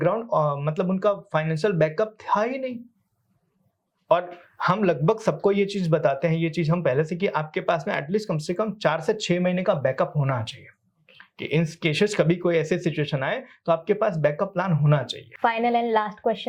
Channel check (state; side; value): identical; both; correlation 1.00